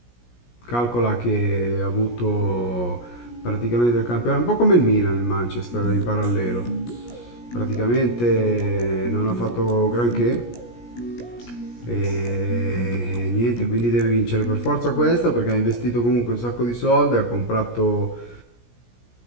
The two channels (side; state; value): right; late; 17 ms